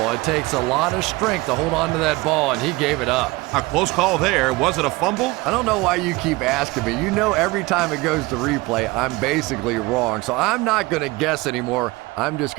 It takes a lot of strength to hold on to that ball, and he gave it up. A close call there. Was it a fumble? I don't know why you keep asking me. You know every time it goes to replay, I'm basically wrong. So I'm not going to guess anymore. I'm just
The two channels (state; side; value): quieter; left; 22.0 dB